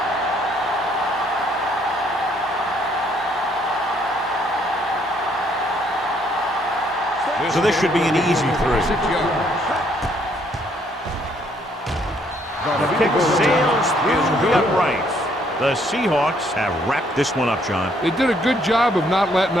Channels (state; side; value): normal; both; correlation 0.67